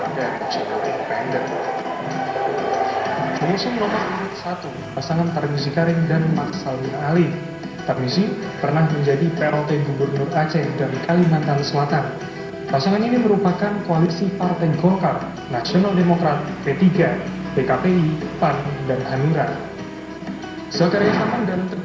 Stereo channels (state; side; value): identical; both; correlation 1.00